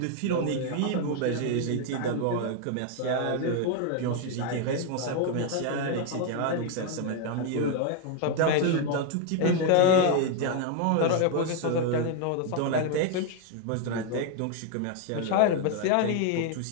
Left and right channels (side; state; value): both; different; correlation 0.00